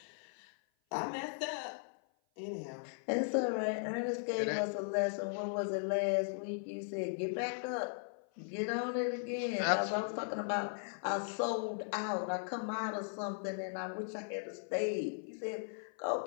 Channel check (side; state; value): right; silent; 53 dB below the other